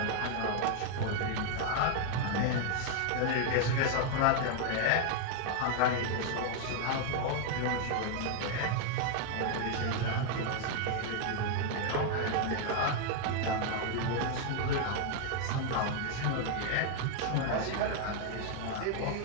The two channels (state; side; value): different; both; correlation 0.00